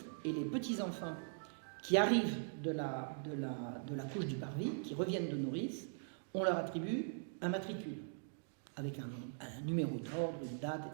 et les petits-enfants qui arrivent de la couche du parvis, qui reviennent de nourrice, on leur attribue un matricule, avec un numéro d'ordre, une date,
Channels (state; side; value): silent; left; digital silence